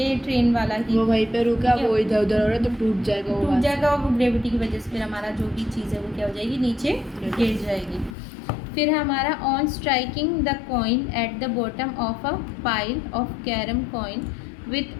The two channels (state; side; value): drops out; right; at 8.2 s